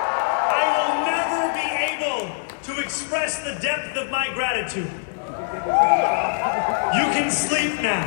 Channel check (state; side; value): silent; right; 61 dB below the other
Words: I will never be able to express the depth of my gratitude. You can sleep now.